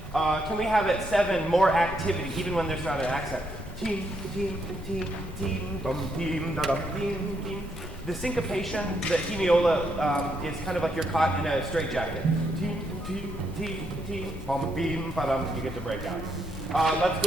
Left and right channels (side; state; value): left; noise; rumble, 12 dB below the sound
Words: Can we have at 7 more activity, even when there's not an accent? Team, team, team, team, bum, team, da, dum, team, team. The syncopation, the hemiola, is kind of like you're caught in a straitjacket. Team, team, team, team, bum, beam, ba-dum. You get to break out. Let's